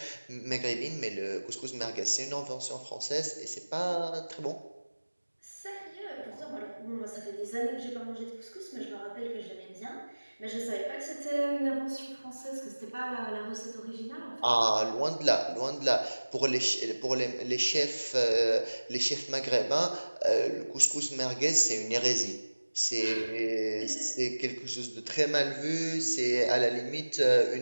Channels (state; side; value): inverted; both; correlation -1.00